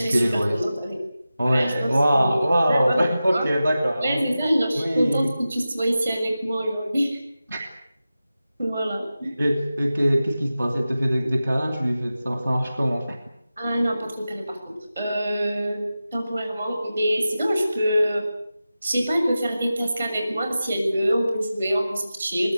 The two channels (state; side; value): inverted; both; correlation -0.94